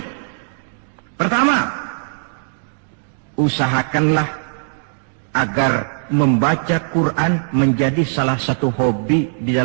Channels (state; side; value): silent; left; 66 dB below the other